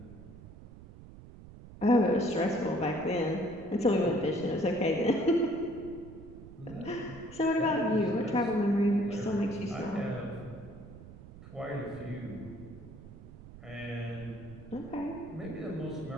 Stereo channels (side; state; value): right; noise; rumble, 17 dB below the sound